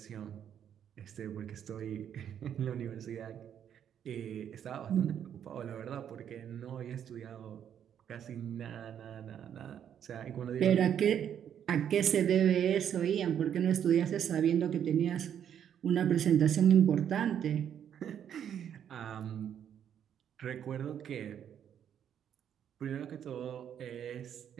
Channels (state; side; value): quieter; left; 9.2 dB